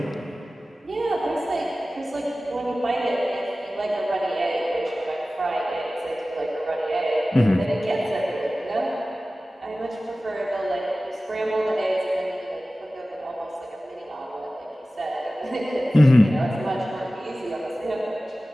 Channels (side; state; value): both; normal; correlation 0.96